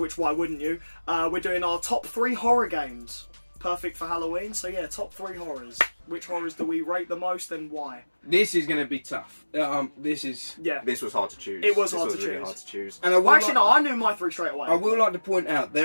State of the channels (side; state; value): both; inverted; correlation -1.00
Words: why wouldn't you? We're doing our top 3 horror games. Perfect for Halloween. So yeah, top 3 horrors. Which horrors do we rate the most and why? This is going to be tough. This was hard to choose. It was hard to choose. Really hard to choose. And I knew my 3 straight away. I will like to point out